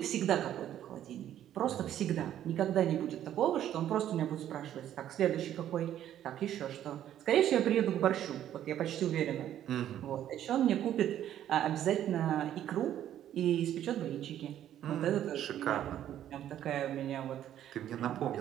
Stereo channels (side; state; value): left; quieter; 11.3 dB